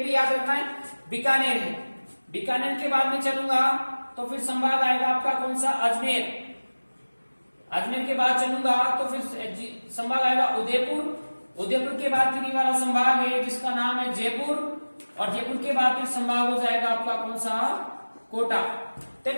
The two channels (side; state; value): both; inverted; correlation -1.00